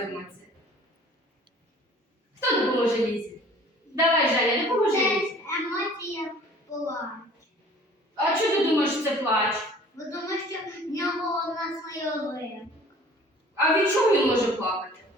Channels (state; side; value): normal; both; correlation 0.50